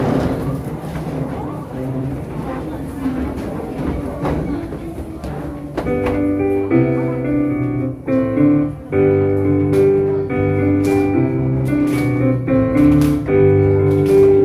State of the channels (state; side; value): identical; both; correlation 1.00